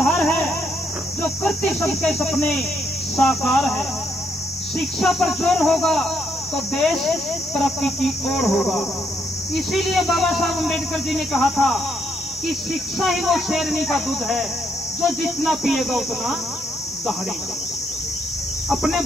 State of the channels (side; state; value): both; normal; correlation 0.74